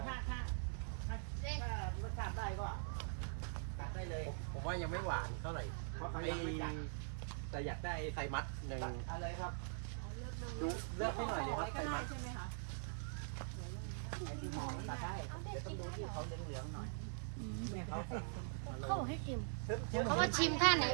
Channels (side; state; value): left; silent; digital silence